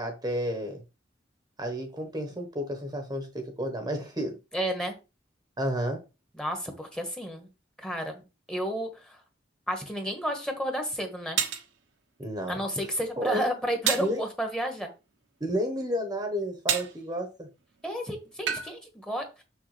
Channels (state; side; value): normal; both; correlation 0.50